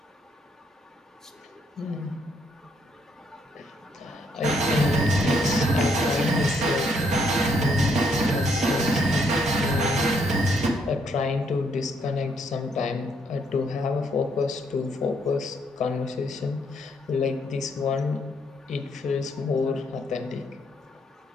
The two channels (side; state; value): both; normal; correlation 0.72